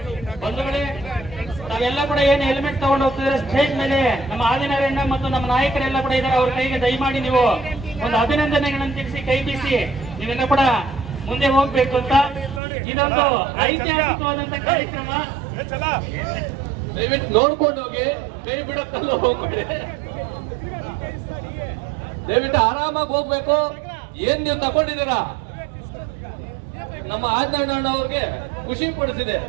ಬಂಧುಗಳೇ, ನಾವೆಲ್ಲ ಕೂಡ ಏನು ಹೆಲ್ಮೆಟ್ ತಗೊಂಡು ಹೋಗ್ತಿದ್ರೆ ಸ್ಟೇಜ್ ಮೇಲೆ ನಮ್ಮ ಆದಿನಾರಾಯಣ ಮತ್ತು ನಮ್ಮ ನಾಯಕರೆಲ್ಲ ಕೂಡ ಇದ್ದಾರೆ. ಅವ್ರ ಕೈಗೆ ದಯಮಾಡಿ ನೀವು ಒಂದು ಅಭಿನಂದನೆಗಳನ್ನು ತಿಳಿಸಿ ಕೈ ಬೀಸಿ ನೀವೆಲ್ಲ ಕೂಡ ಮುಂದೆ ಹೋಗ್ಬೇಕು ಅಂತ. ಇದೊಂದು ಐತಿಹಾಸಿಕವಾದಂತ ಕಾರ್ಯಕ್ರಮ. ದಯವಿಟ್ಟು ನೋಡ್ಕೊಂಡು ಹೋಗಿ, ಕೈ ಬಿಡಕ್ಕಲ್ಲ ಹೋಗ್ಬೇಡಿ. ದಯವಿಟ್ಟು ಆರಾಮಾಗಿ ಹೋಗ್ಬೇಕು. ಏನ್ ನೀವು ತಗೊಂಡಿದ್ದೀರಾ ನಮ್ಮ ಆದಿನಾರಾಯಣ ಅವ್ರಿಗೆ ಖುಷಿ ಪಡಿಸಿದೆ.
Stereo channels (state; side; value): drops out; left; at 12.6 s